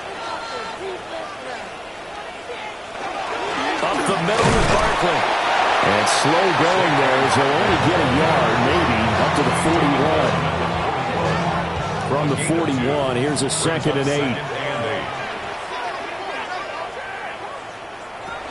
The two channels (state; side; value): identical; both; correlation 1.00